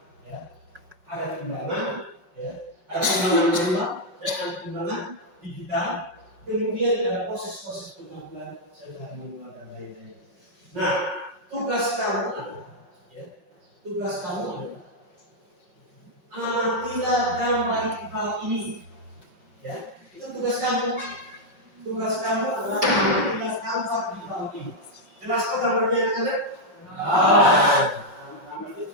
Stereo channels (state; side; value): late; left; 5.5 ms